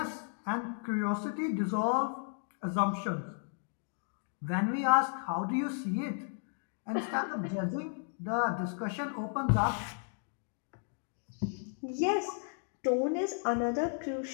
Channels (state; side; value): silent; right; 55 dB below the other